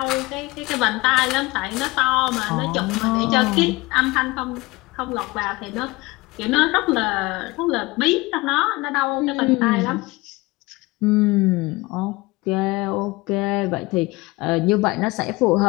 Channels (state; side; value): quieter; right; 22.1 dB